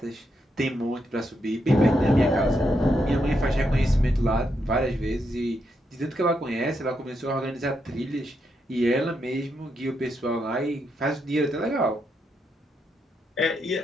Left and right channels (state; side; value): normal; both; correlation 0.81